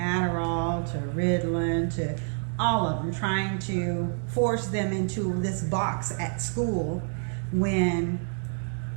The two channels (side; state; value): left; silent; 60 dB below the other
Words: to Ritalin to all of them, trying to force them into this box at school, when